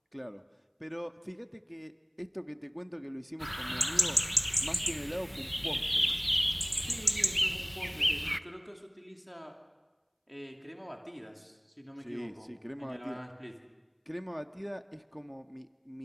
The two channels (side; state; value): both; identical; correlation 1.00